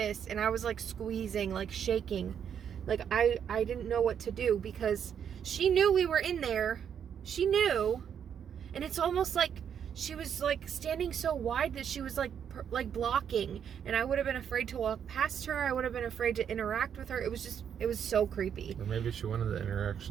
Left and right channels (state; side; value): quieter; left; 8.3 dB